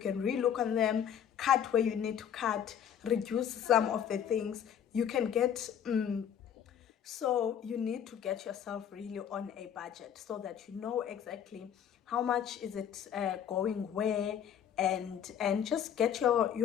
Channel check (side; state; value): right; quieter; 8.9 dB